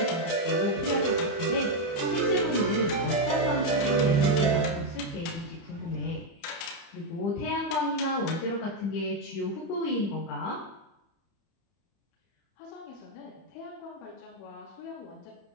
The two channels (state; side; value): late; right; 30 ms